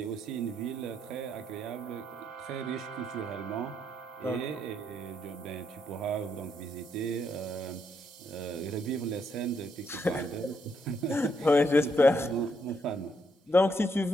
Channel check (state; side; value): normal; both; correlation 0.76